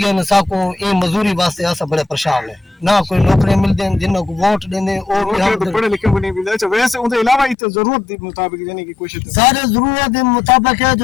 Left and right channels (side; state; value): right; drops out; at 7.6 s